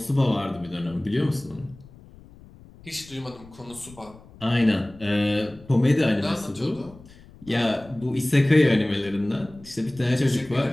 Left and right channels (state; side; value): noise; left; rumble, 22 dB below the sound